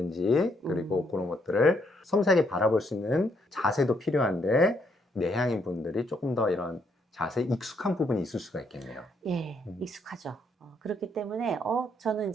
그리고 그런 것들을 섬세하게 바라볼 수 있는 자세도 필요한데 내향인 분들이 조금 더 이런 자세에 익숙한 부분이 있을 수가 있겠네요. 예, 익숙하죠. 그렇기 때문에 저는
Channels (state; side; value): normal; both; correlation 0.73